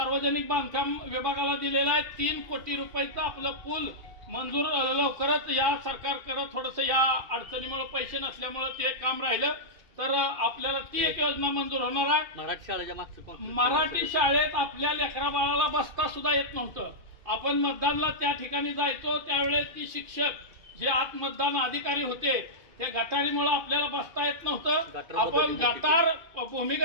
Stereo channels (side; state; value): left; late; 2.5 ms